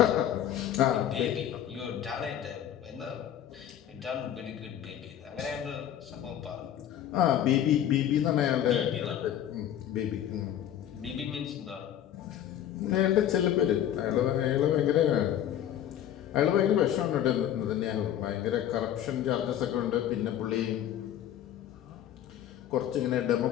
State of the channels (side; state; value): right; quieter; 10.8 dB